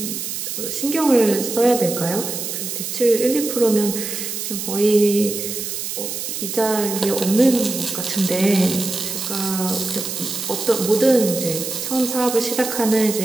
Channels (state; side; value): noise; right; hiss, 5 dB below the sound